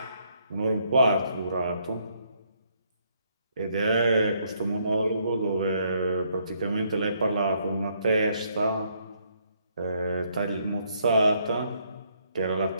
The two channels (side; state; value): both; inverted; correlation -0.71